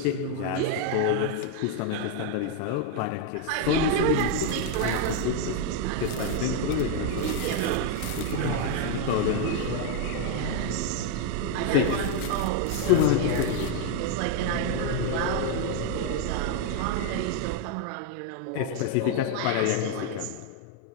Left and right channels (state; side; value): different; both; correlation 0.00